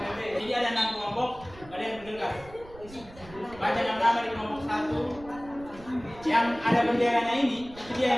Jadi ada 6 kelompok, kalian bergegas. Baca nama-nama di kelompok 1. Yang ada benderanya ini, itu dia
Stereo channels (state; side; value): noise; right; rumble, 20 dB below the sound